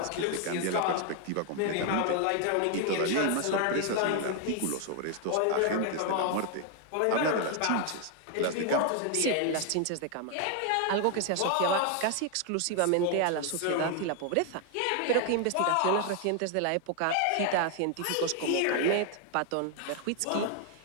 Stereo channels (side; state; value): both; different; correlation 0.00